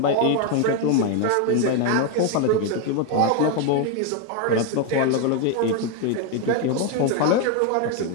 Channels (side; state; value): both; different; correlation 0.01